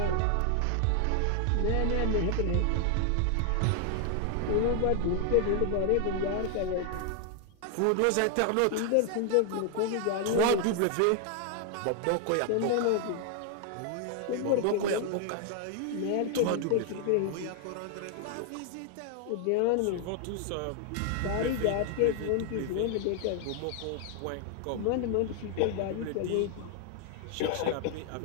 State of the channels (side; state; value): both; different; correlation 0.00